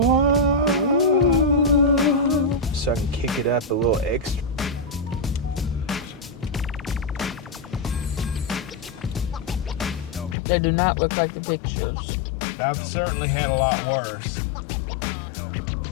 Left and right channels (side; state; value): right; drops out; at 10.4 s